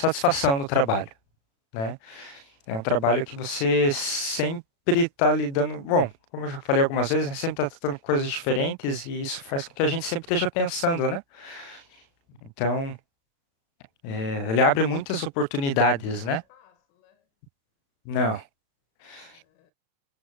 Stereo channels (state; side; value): late; right; 36 ms